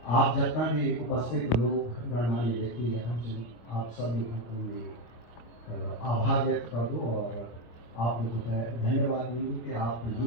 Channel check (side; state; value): right; late; 25 ms